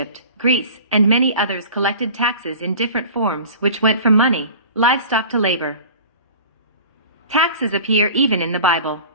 Greece, and many others collected taxes in different forms which went from money, livestock to labor. Taxes appear even in the Bible.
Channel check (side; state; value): both; inverted; correlation -0.40